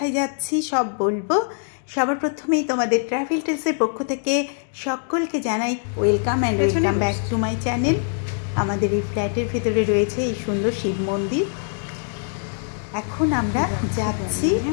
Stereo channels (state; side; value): silent; right; 63 dB below the other